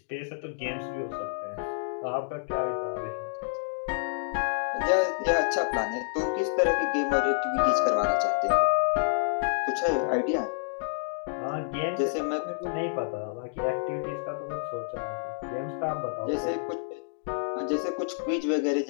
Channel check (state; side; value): silent; right; digital silence